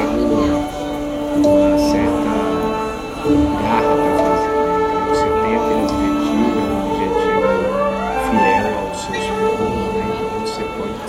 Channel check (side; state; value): both; identical; correlation 1.00